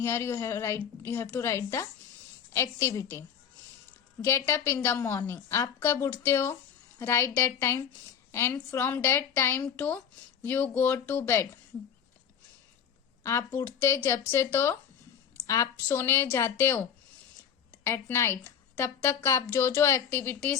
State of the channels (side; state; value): right; quieter; 8.1 dB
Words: you have to write the activity. Get up in the morning. आप कब उठते हो? Write that time and from that time to you go to bed. आप उठते जब से तो आप सोने जाते हो at night, तब तक आप जो जो